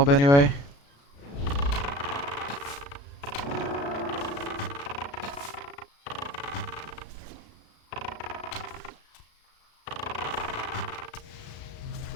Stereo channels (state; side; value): late; right; 35 ms